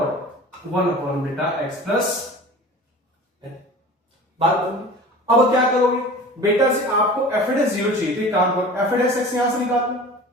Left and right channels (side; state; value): both; normal; correlation 0.39